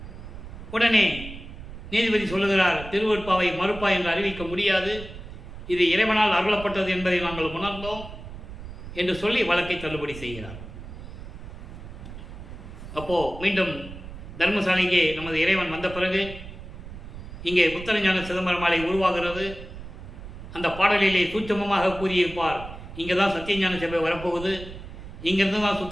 உடனே நீதிபதி சொல்லுகிறார், திருவருட்பாவை மறுப்பா என்று அறிவிக்க முடியாது, இது இறைவனால் அருளப்பட்டது என்பதை நாங்கள் உணர்ந்தோம் என்று சொல்லி வழக்கை தள்ளுபடி செய்கிறார். அப்போ மீண்டும் தர்மசாலைக்கு நமது இறைவன் வந்த பிறகு இங்கே புத்தரஞான சிதம்பரமாலை உருவாகிறது. அந்த பாடலிலே சூட்சமமாக கூறியிருப்பார், இங்கே தான் சத்தியஞான சபை வரப்போகுது, இங்கிருந்து தான்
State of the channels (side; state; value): right; noise; rumble, 12 dB below the sound